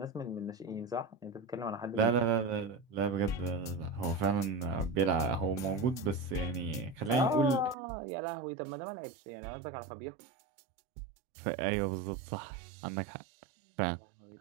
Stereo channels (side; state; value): left; drops out; at 7.8 s